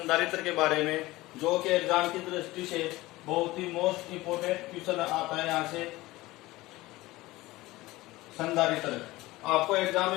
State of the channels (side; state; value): right; quieter; 19.0 dB